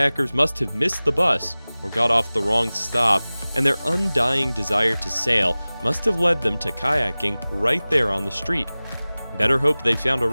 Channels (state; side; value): inverted; both; correlation -0.99